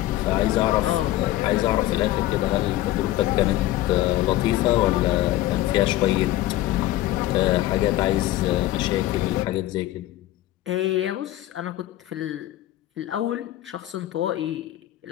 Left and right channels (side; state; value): right; quieter; 15.2 dB